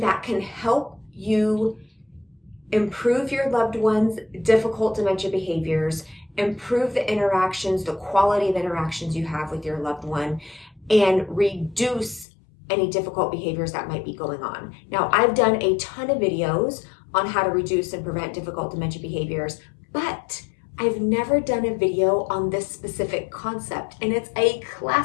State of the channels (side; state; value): right; drops out; at 12.2 s